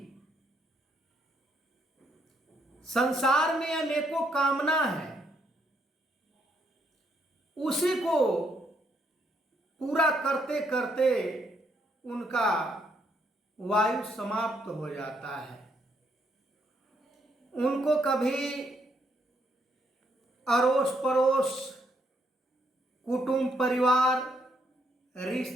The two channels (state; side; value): normal; both; correlation 0.73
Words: संसार में अनेकों कामना है, उसी को पूरा करते करते उनका वायु समाप्त हो जाता है। उनको कभी अड़ोस पड़ोस, कुटुंब परिवार,